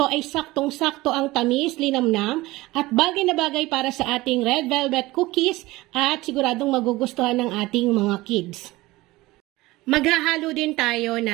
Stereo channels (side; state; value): left; quieter; 19.5 dB